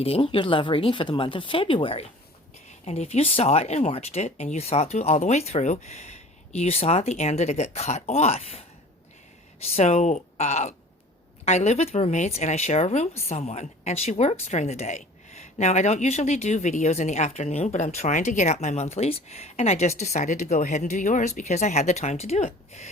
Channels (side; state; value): both; normal; correlation 0.45